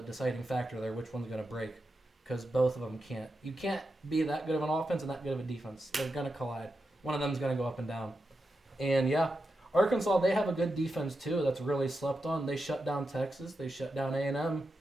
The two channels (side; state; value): both; normal; correlation 0.88